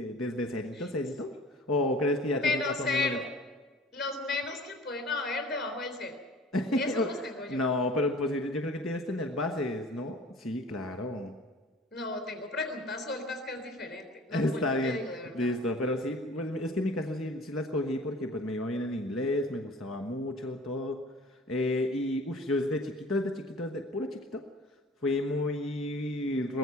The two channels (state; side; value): normal; both; correlation 0.46